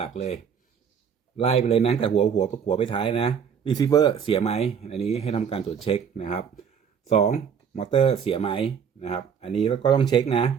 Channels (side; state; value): left; quieter; 7.3 dB